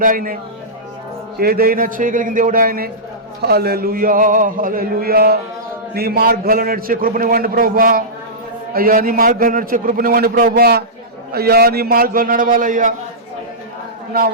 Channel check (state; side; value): normal; both; correlation -0.16